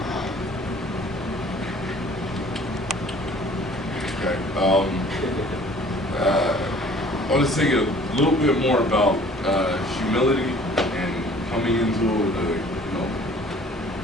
Okay. I want to say a little bit more about humility and coming into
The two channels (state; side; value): normal; both; correlation 0.52